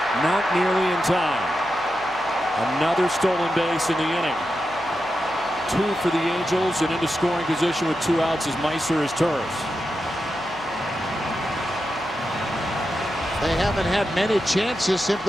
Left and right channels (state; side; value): noise; left; hum, 23 dB below the sound